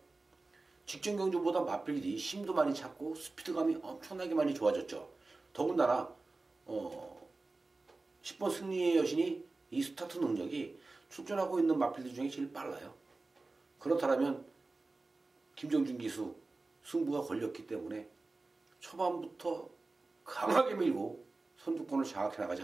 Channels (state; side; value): quieter; left; 3.4 dB